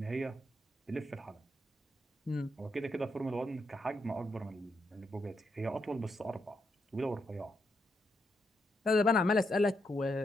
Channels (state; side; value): normal; both; correlation 0.80